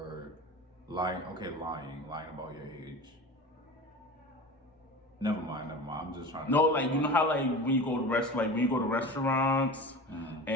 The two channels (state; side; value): normal; both; correlation 0.33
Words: lying. Okay, lying about your age. Never mind. I'm just trying to. No, like you know how like when you go to restaurants